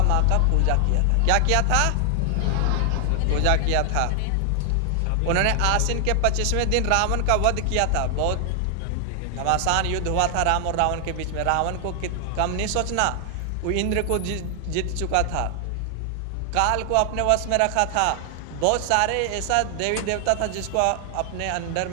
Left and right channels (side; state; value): both; different; correlation 0.00